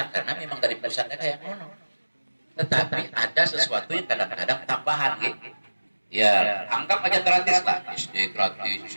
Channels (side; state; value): both; inverted; correlation -1.00